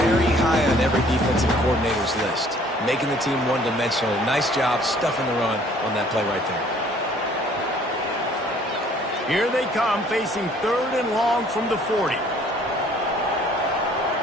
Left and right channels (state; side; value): normal; both; correlation 0.57